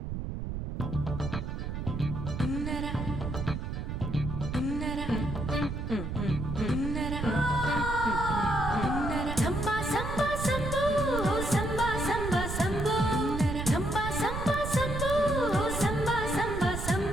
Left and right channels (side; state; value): right; noise; rumble, 4 dB below the sound